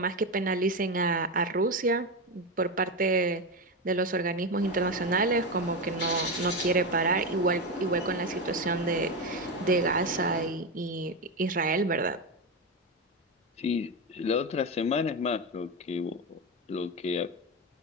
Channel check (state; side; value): normal; both; correlation 0.14